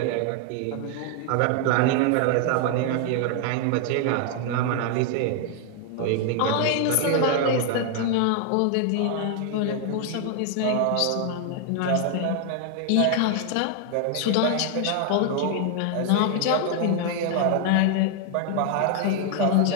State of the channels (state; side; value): different; both; correlation 0.00